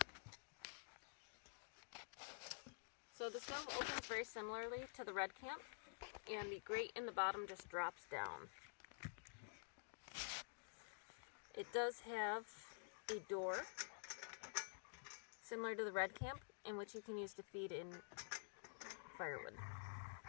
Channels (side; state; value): right; silent; digital silence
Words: So the stove opens very similarly to the Red Camp, and the grate in the bottom just drops down. It does have a door, similar to the Red Camp, in which you can use to feed in firewood.